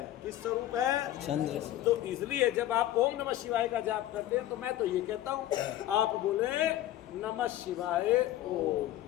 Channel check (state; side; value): quieter; right; 13.7 dB